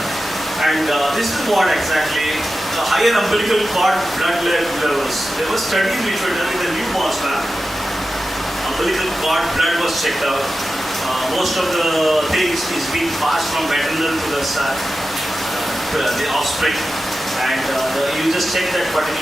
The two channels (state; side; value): normal; both; correlation 0.93